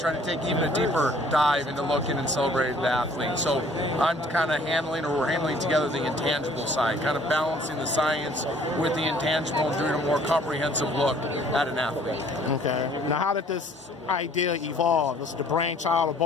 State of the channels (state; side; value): normal; both; correlation 0.56